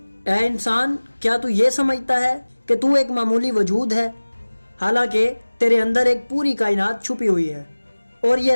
ऐ इंसान, क्या तू ये समझता है कि तू एक मामूली वजूद है, हालांकि तेरे अंदर एक पूरी कायनात छुपी हुई है। और ये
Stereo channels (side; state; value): both; inverted; correlation -1.00